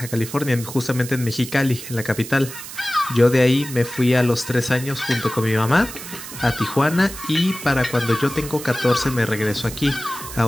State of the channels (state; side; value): noise; right; hiss, 12 dB below the sound